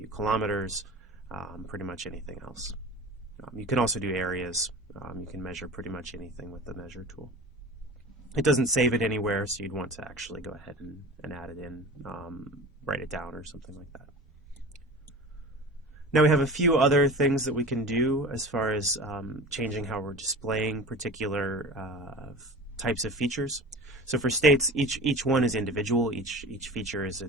kilometers, pretty much anything else. You can also do areas. You can measure pretty much anything with the measure tool. It doesn't save it anywhere, so you'd want to actually go ahead and add it in, write it down or something like that. Now we have a few other things that we can do as far as changing how we're displaying particular types of features. So for states, each one is individual. Each feature is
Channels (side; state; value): both; normal; correlation 0.35